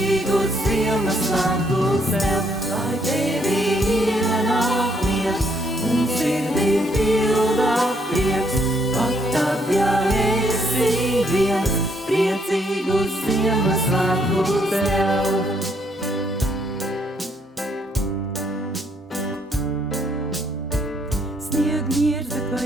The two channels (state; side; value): normal; both; correlation 0.69